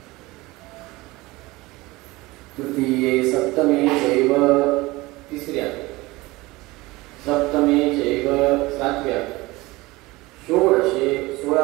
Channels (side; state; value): left; quieter; 21.0 dB